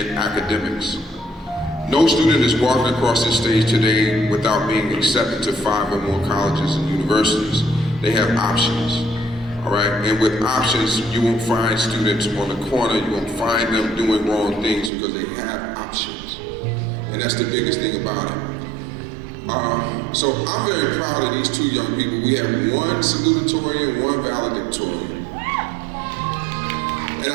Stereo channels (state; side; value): drops out; left; at 14.9 s